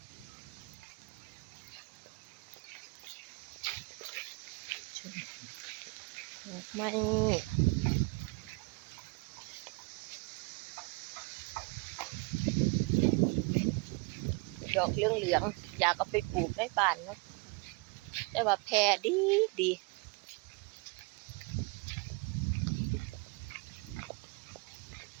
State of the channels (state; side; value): quieter; left; 28.6 dB